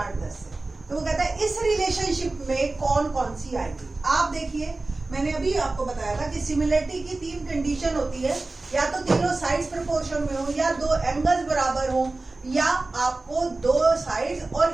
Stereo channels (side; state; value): left; quieter; 3.2 dB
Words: 10 है। तो वो कहता है इस रिलेशनशिप में कौन कौन सी आएगी। आप देखिए, मैंने अभी आपको बताया था कि सिमिलरिटी की 3 कंडीशन होती है, या तो तीनों साइड्स प्रोपोर्शन में हो, या 2 एंगल्स बराबर हो, या आपको 2 साइड्स